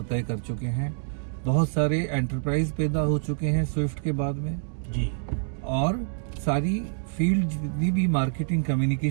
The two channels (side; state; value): left; silent; digital silence